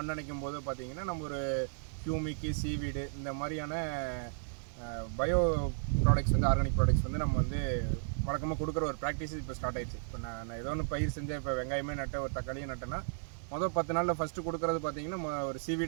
அணைக்கும் போதோ பார்த்தீங்கன்னா, நம்ம ஒரு ஹியூமிக்கு, சீவீடு இந்த மாதிரியான பயோ ப்ராடக்ட்ஸ் வந்து ஆர்கானிக் ப்ராடக்ட்ஸ் வந்து நம்ம வந்து வழக்கமாக கொடுக்குற ஒரு ப்ராக்டிஸ் இப்போ ஸ்டார்ட் ஆயிடுச்சு. இப்போ நான் ஏதோ ஒன்று பயிர் செஞ்சேன், இப்போ வெங்காயமே நட்டேன், ஒரு தக்காளியும் நட்டேன்னா, மொதல் 10 நாளில் ஃபஸ்ட்டு கொடுக்குறது பார்த்தீங்கன்னா ஒரு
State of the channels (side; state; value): left; silent; 55 dB below the other